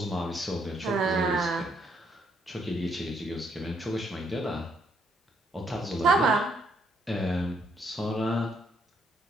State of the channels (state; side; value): normal; both; correlation 0.72